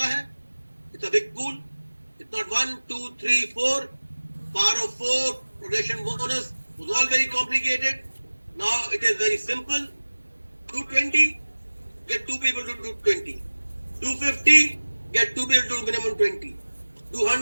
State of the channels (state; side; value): inverted; both; correlation -1.00